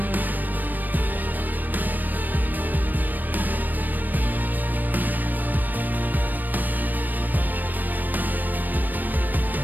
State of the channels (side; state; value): left; late; 0.088 ms